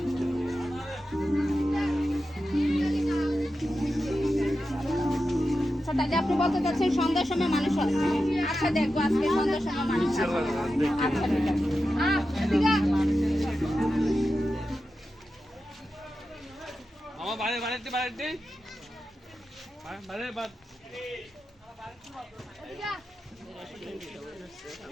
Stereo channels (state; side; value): normal; both; correlation 0.91